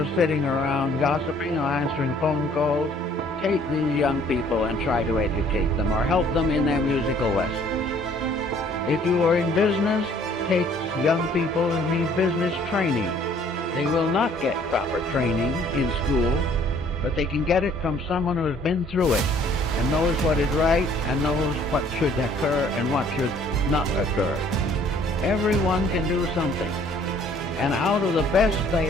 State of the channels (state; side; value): normal; both; correlation 0.58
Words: sitting around gossiping or answering phone calls, take these young people and try to educate them or help them in their musical lessons. If you are in business, take young people who need business training. They will not get proper training in school, but they can get it from someone who has been through it and knows what is right and knows what should occur and what should not occur. Everyone can do something, and out of the best they